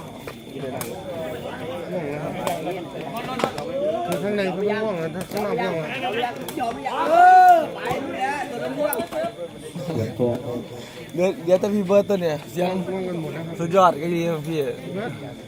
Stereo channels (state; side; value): identical; both; correlation 1.00